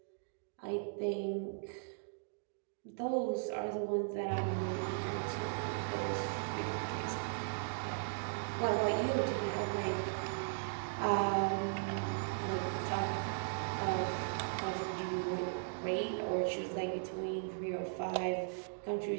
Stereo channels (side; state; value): left; silent; digital silence